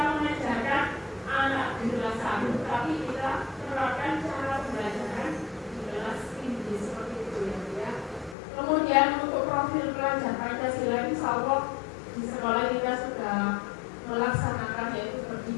mengajarkan anak di kelas 1, tapi kita terapkan cara pembelajaran di kelas tinggi seperti itu, ya. Kemudian untuk profil pelajar Pancasila, insya Allah di sekolah kita sudah melaksanakan, yaitu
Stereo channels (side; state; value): right; drops out; at 8.3 s